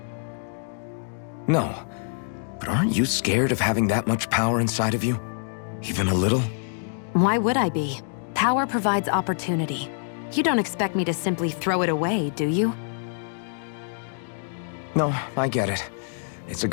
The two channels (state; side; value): silent; right; digital silence